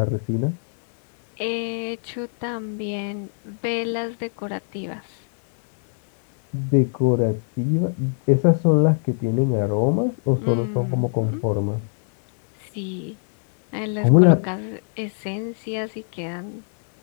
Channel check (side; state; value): right; silent; digital silence